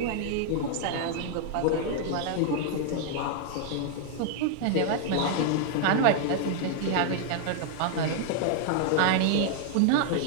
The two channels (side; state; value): both; different; correlation 0.00